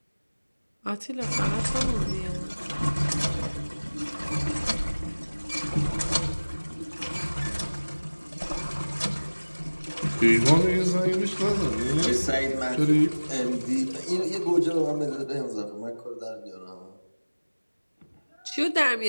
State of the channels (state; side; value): inverted; both; correlation -1.00